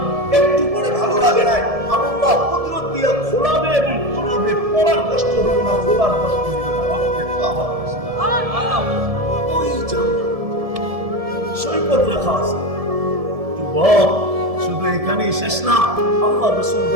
একটু পরে ভালো লাগে না, আল্লাহ কুদরত দিয়ে খোলাবে এবং খোলাবে, পড়ার কষ্ট হবে না, খোলার কষ্ট হবে না। ওই জান্নাত সৈকত রাখা আছে। যুবক, শুধু এখানেই শেষ না, আল্লাহ রাসূল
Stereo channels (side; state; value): left; late; 1.7 ms